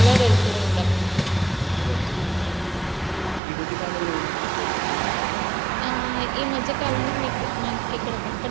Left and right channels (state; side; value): drops out; left; at 3.4 s